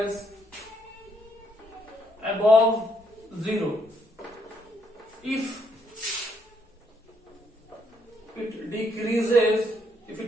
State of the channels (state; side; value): normal; both; correlation 0.72